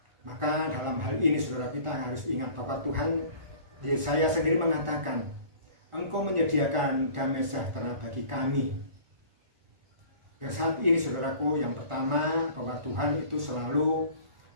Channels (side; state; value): left; late; 1.4 ms